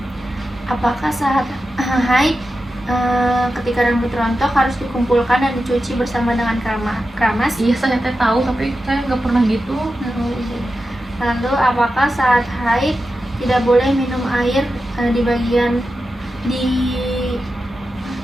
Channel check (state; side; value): normal; both; correlation 0.91